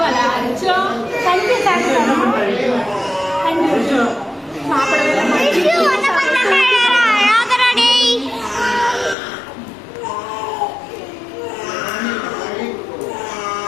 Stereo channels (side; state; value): right; drops out; at 9.2 s